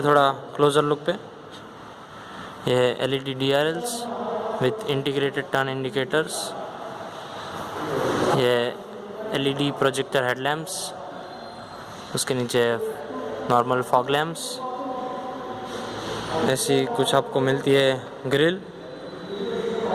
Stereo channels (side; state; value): both; identical; correlation 1.00